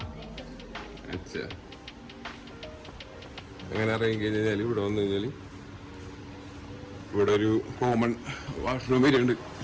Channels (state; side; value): identical; both; correlation 1.00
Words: अच्छा. അങ്ങനെ ഇറങ്ങി കഴിഞ്ഞാൽ ഇവിടെ വന്നു കഴിഞ്ഞാൽ ഇവിടെ ഒരു കോമൺ വാഷ്റൂം വരുന്നുണ്ട്,